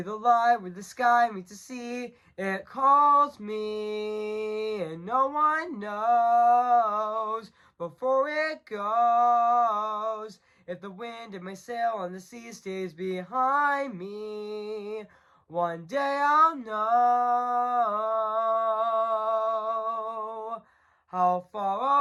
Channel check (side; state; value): both; identical; correlation 1.00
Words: light where the sky meets the sea. It calls me, and no one knows before it goes. If the wind in my sail on the sea stays behind me, one day I'll know how far